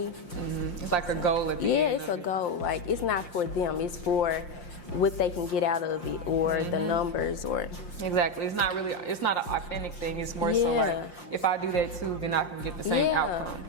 It's like a goal at the Yeah, end. it's a goal. Like it's not for them. It's for what they can get out of it, or the numbers, or Exactly. It's not an authentic thing. It's more so Yeah. like, if I do that too, then I can get the same outcome.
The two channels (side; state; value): right; late; 5.7 ms